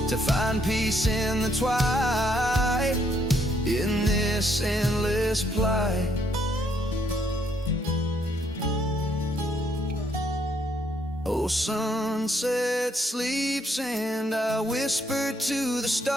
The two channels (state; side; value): normal; both; correlation 0.71